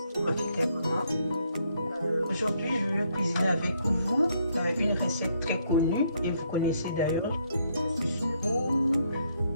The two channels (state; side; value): inverted; both; correlation -0.72